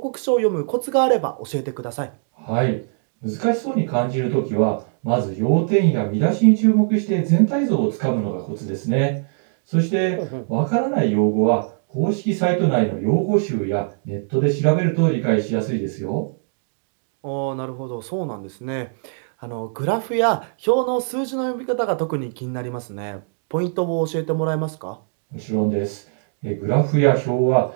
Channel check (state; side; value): silent; left; 64 dB below the other